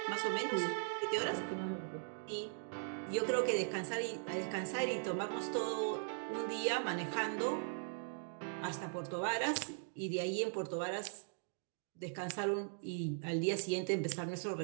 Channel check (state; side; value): silent; left; digital silence